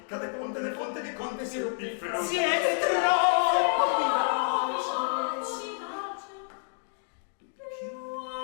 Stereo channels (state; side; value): silent; right; 58 dB below the other